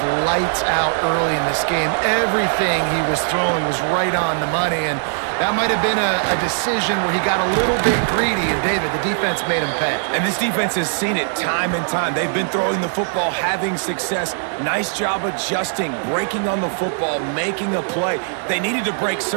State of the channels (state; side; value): silent; left; 66 dB below the other